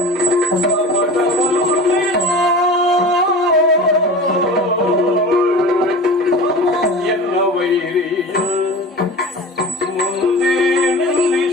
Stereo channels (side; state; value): both; normal; correlation 0.34